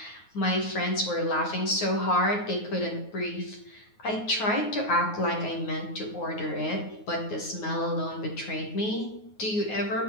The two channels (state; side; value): late; right; 9.5 ms